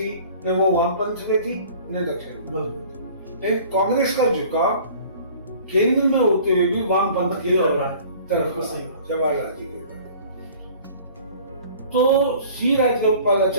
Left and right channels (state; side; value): inverted; both; correlation -0.48